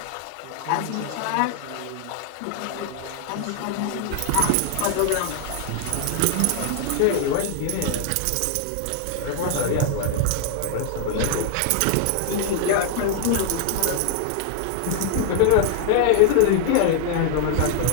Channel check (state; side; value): different; both; correlation 0.00